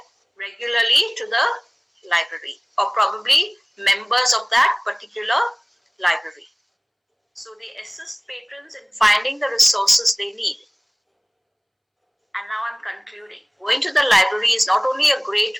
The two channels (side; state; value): both; identical; correlation 1.00